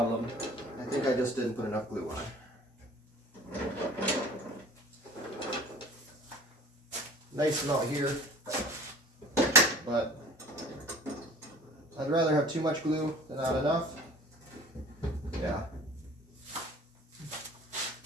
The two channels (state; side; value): normal; both; correlation 0.45